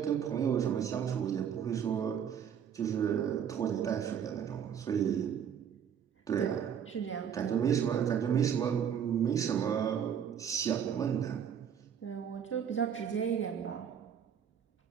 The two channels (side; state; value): left; quieter; 8.3 dB